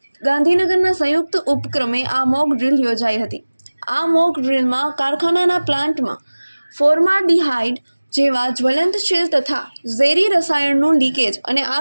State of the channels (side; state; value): both; inverted; correlation -1.00